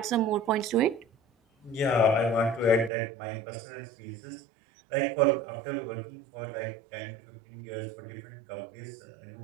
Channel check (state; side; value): drops out; left; at 2.9 s